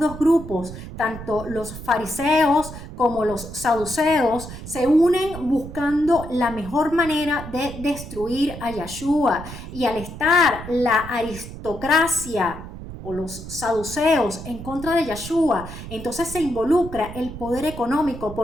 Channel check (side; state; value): right; noise; rumble, 11 dB below the sound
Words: dos grupos, tanto los fariseos como los saduceos, se unen buscando la mejor manera de destruir a Yeshua. Y al estar la aristocracia o los saduceos en contra de Yeshua, entonces se involucra el poder económico